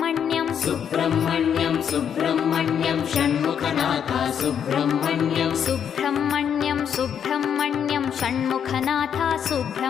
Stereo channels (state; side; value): quieter; right; 8.2 dB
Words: सुब्रह्मण्यं सुब्रह्मण्यं षण्मुखनाथ सुब्रह्मण्यं सुब्रह्मण्यं सुब्रह्मण्यं षण्मुखनाथ